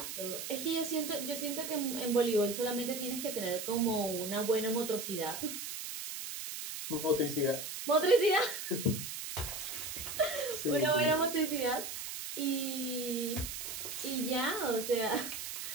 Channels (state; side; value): noise; right; hiss, 6 dB below the sound